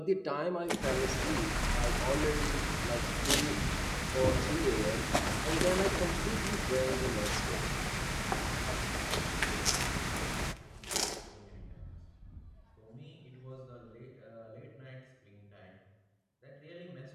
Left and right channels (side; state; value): both; identical; correlation 1.00